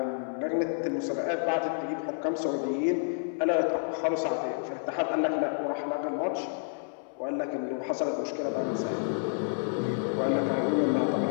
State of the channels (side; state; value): right; silent; 58 dB below the other